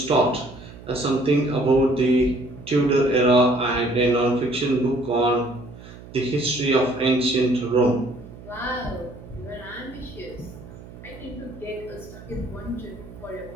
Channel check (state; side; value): noise; right; hum, 17 dB below the sound